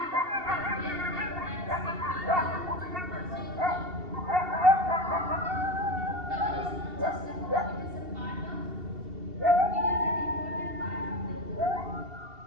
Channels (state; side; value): late; left; 2.7 ms